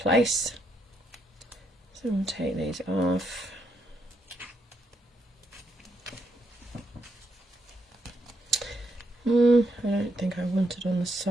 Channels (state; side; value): normal; both; correlation 0.78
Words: So we'll take these off. I don't think I want it on the